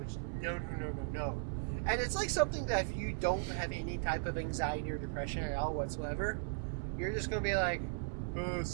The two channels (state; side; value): silent; left; digital silence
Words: no. And it's like something that if you don't have any type of anxiety or depression at all whatsoever, you're just gonna be like,